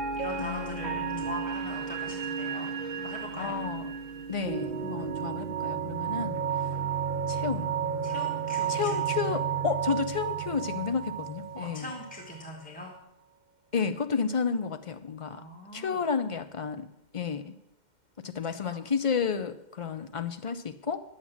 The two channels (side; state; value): left; late; 2.1 ms